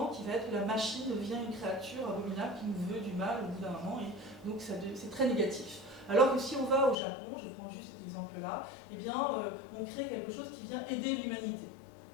qui va être que la machine devient une créature abominable qui nous veut du mal au bout d'un moment, et donc c'est très négatif. Alors que si on va au Japon, je prends juste cet exemple-là, eh bien on crée quelque chose qui vient aider l'humanité.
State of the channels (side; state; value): right; drops out; at 7.0 s